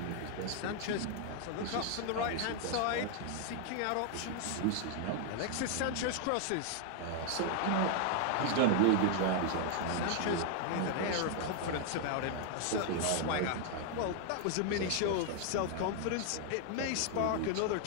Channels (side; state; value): both; different; correlation 0.00